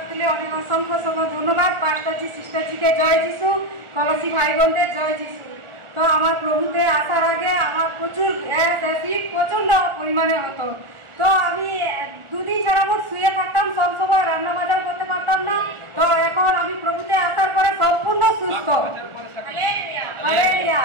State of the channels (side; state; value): left; late; 1.4 ms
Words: তুলে অনেক অসংখ্য ধন্যবাদ পাস্টারজি সিস্টারজিকে জয় যিশু কলসি ভাই বোনদের জয় যিশু। তো আমার প্রভুতে আসার আগে আমার প্রচুর অ্যাসিড প্রচন্ড পরিমাণে হতো। তো আমি দুদিন যাবত শুয়ে থাকতাম, সব সময় রান্না বাজার করতে পারতাম না। তো এখন আমি প্রভুতে আসার পরে সম্পূর্ণ সুস্থ।